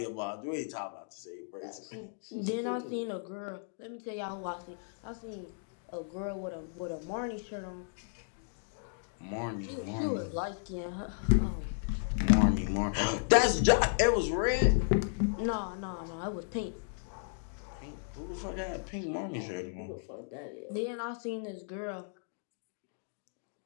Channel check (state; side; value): silent; right; digital silence